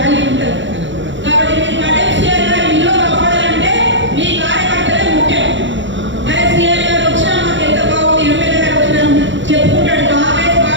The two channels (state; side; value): late; left; 0.54 ms